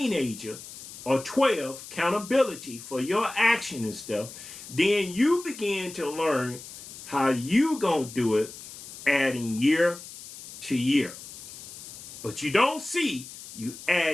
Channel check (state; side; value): noise; left; hiss, 14 dB below the sound